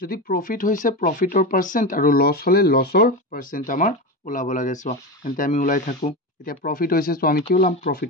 যদি প্ৰফিট হৈছে প্ৰফিটৰ পাৰ্চেণ্ট আৰু লছ হ'লে লছৰ পাৰ্চেণ্ট আমাৰ ওলাব লাগে চোৱা তেন্তে আমি ওলাই থাকোঁ এতিয়া প্ৰফিট হৈছে চ' আমি কি ওলাম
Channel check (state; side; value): normal; both; correlation 0.20